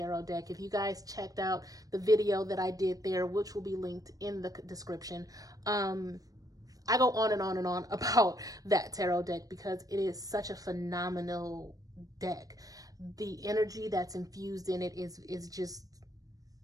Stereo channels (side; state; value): left; late; 0.18 ms